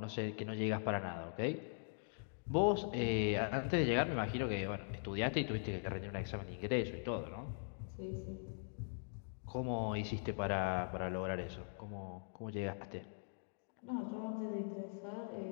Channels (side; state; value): right; silent; digital silence